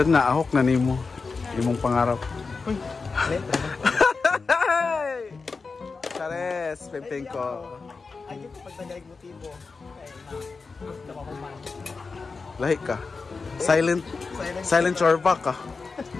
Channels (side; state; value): right; quieter; 4.5 dB